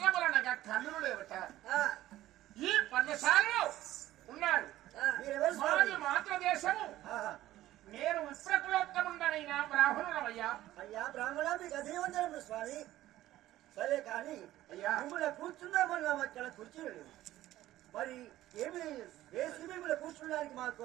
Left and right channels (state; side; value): quieter; left; 14.8 dB